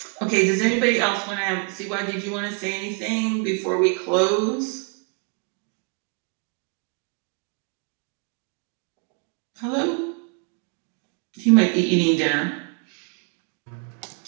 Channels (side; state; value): left; quieter; 37.4 dB